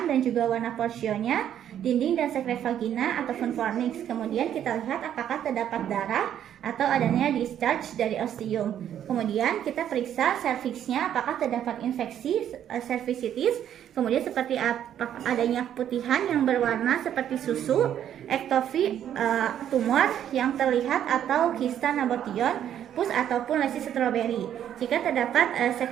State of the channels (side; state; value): left; quieter; 10.2 dB